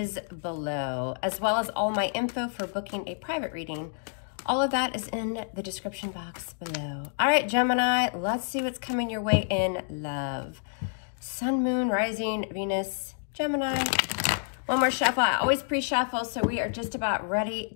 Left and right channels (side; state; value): right; silent; digital silence